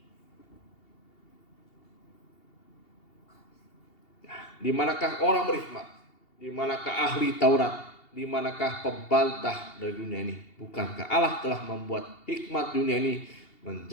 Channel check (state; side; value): late; right; 2.8 ms